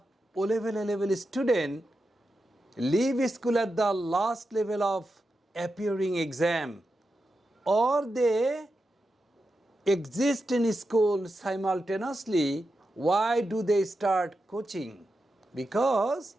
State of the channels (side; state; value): both; normal; correlation 0.89